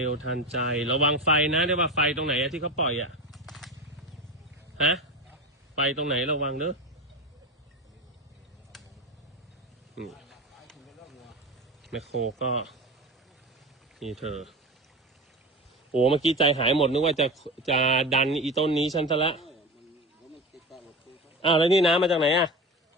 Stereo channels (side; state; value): both; normal; correlation 0.26